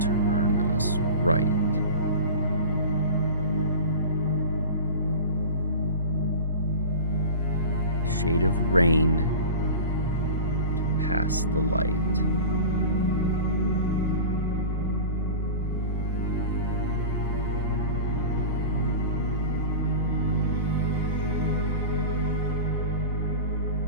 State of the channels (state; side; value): inverted; both; correlation -0.33